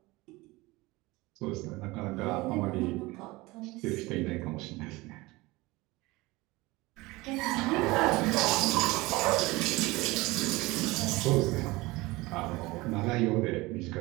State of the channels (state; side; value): quieter; left; 21.6 dB